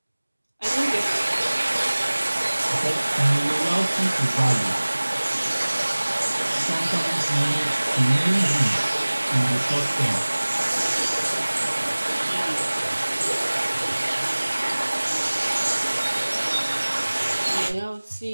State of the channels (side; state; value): both; inverted; correlation -1.00